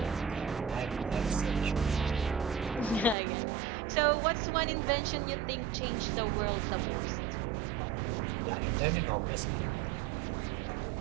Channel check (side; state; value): left; drops out; at 3.2 s